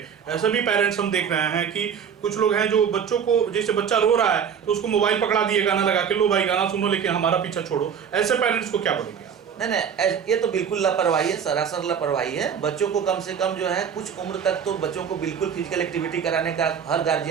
ऐसे भी पेरेंट्स हम देख रहे हैं कि कुछ लोग हैं जो बच्चों को, जैसे बच्चा रो रहा है तो उसको मोबाइल पकड़ा दिए, गाना लगा के, लो भाई गाना सुनो लेकिन हमारा पीछा छोड़ो। ऐसे पेरेंट्स को क्या बोलेंगे? नहीं, ये तो बिल्कुल लापरवाही है, सरासर लापरवाही है। बच्चों को कम से कम जो है कुछ उम्र तक तो बच्चों को बिल्कुल फिजिकल एक्टिविटी कराने का हर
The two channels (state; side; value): quieter; left; 7.5 dB